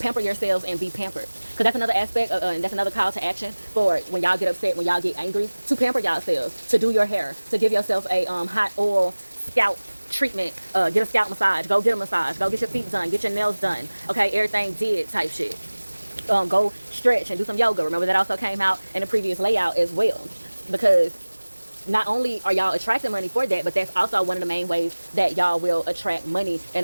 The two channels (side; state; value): both; inverted; correlation -1.00